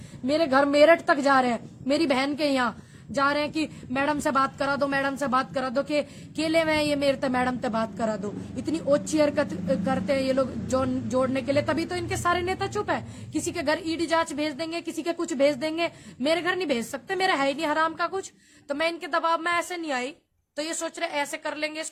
मेरे घर मेरठ तक जा रहे हैं, मेरी बहन के यहाँ जा रहे हैं कि मैडम से बात करा दो, मैडम से बात करा दो, के केले में ये मेरे मैडम से बात करा दो। इतनी ओछी हरकत करते हैं ये लोग जोड़ने के लिए, तभी तो इनके सारे नेता चुप है। किसी के घर ईडी जांच भेज देंगे, किसी के कुछ भेज देंगे, मेरे घर नहीं भेज सकते, मेरा है ही नहीं हराम का कुछ। तो मैं इनके दबाव में ऐसे नहीं आई, तो ये सोच रहे ऐसे कर लेंगे,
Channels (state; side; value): identical; both; correlation 1.00